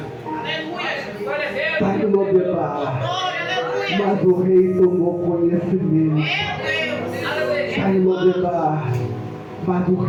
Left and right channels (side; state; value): both; identical; correlation 1.00